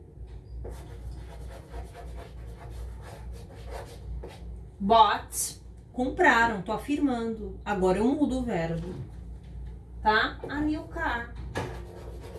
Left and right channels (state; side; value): identical; both; correlation 1.00